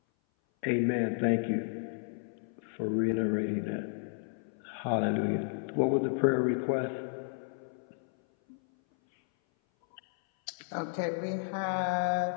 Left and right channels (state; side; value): silent; right; 56 dB below the other